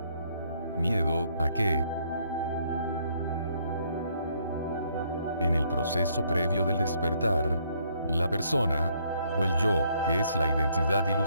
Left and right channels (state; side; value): inverted; both; correlation -0.68